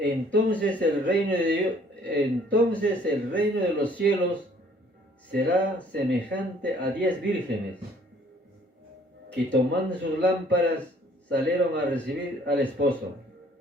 el reino de los cielos será semejante a 10 vírgenes que tomando sus lámparas salieron a recibir al esposo.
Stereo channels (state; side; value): normal; both; correlation 0.59